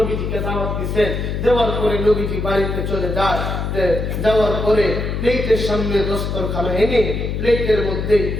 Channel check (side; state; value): left; noise; hum, 2 dB below the sound